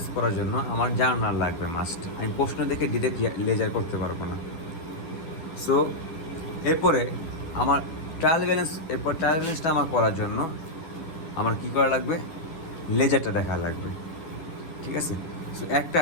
করার জন্য আমার জার্নাল লাগবে মাস্ট। আমি প্রশ্ন দেখে ডিরেক্ট লেজার করতে পারবো না। সো এরপরে আমার ট্রায়াল ব্যালেন্সটা আমার করার জন্য আমার কী করা লাগবে, লেজারটা দেখা লাগবে। ঠিক আছে? সো একটা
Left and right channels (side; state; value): right; late; 12 ms